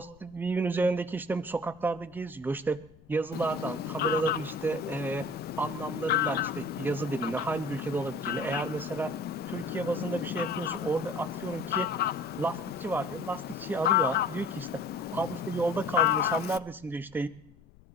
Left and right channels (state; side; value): noise; left; rumble, 26 dB below the sound